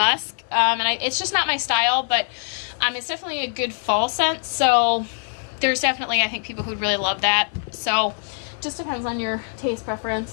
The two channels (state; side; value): silent; right; digital silence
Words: and it's just not my style, but it's definitely a good fall scent, so there's definitely, I think, people who'd really love that, so just depends on your taste